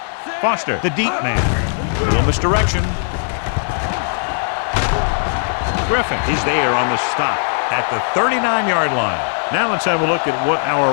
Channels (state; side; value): silent; right; 59 dB below the other